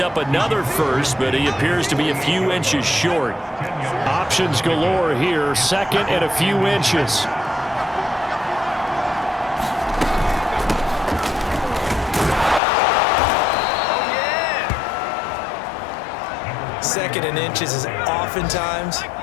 another first, but he appears to be a few inches short. Options galore here, 2nd and a few inches. Second and inches is oftentimes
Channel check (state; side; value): drops out; right; at 12.6 s